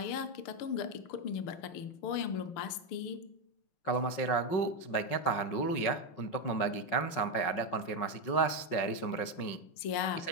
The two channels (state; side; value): late; right; 5.5 ms